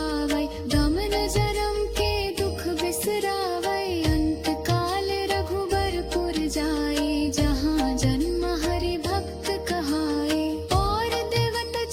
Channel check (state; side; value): identical; both; correlation 1.00